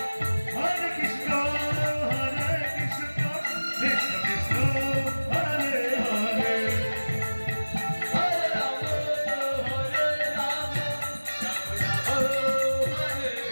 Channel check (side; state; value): both; inverted; correlation -1.00